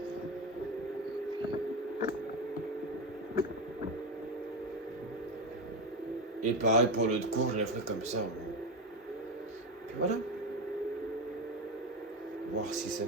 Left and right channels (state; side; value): normal; both; correlation 0.16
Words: Et pareil pour l'autre cours, je la ferai comme ça. Et puis voilà. Voir si ça